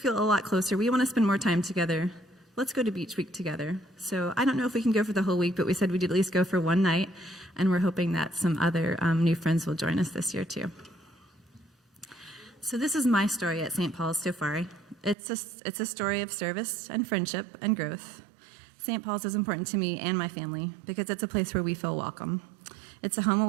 a lot closer. We want to spend more time together. Let's go to Beach Week together. So I don't know if we can go for the whole week, but we said we'd at least go for one night, and we're hoping that some other new friends will join us this year too. So this is my story at St. Paul's so far. It's a story of service and friendship and growth. St. Paul's is important to me and my family because it's a place where we feel welcome. It's a home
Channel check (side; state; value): left; drops out; at 15.2 s